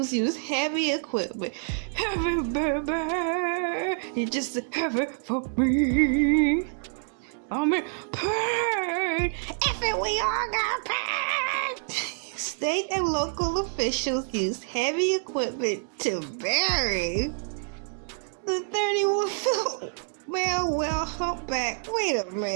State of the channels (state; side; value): silent; left; digital silence